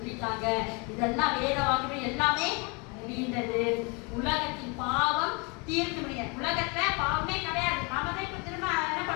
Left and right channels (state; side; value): quieter; right; 30.4 dB